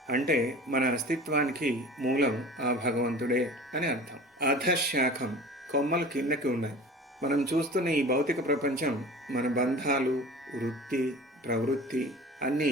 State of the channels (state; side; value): normal; both; correlation 0.40